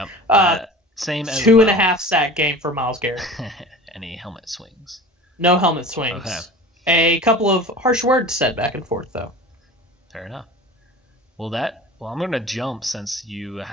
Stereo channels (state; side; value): normal; both; correlation 0.37